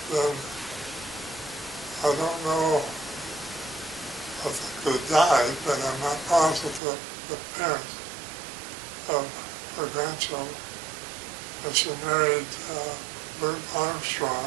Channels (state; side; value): drops out; left; at 6.8 s